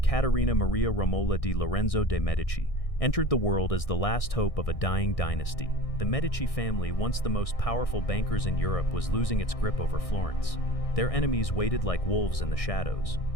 Maria Romola di Lorenzo de' Medici, entered the world as the last hope of a dying dynasty. The Medici family, once the most powerful bankers in Europe, was losing its grip over Florence. Their enemies waited like wolves in the shadows.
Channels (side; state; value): right; late; 1.6 ms